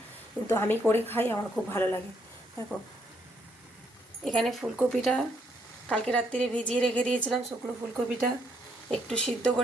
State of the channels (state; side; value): normal; both; correlation 0.72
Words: কিন্তু আমি করে খাই, আমার খুব ভালো লাগে। দেখো এখানে ফুলকপিটা কালকে রাত্রিরে ভিজিয়ে রেখে দিয়েছিলাম। শুকনো ফুলকপিটা একটু সিদ্ধ